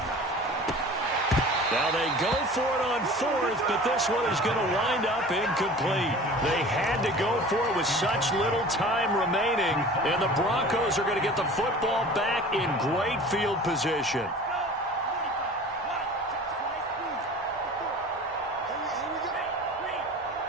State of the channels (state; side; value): normal; both; correlation 0.41